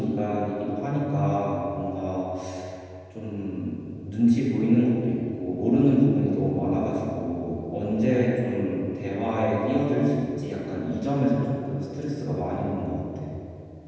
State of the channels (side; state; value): both; identical; correlation 1.00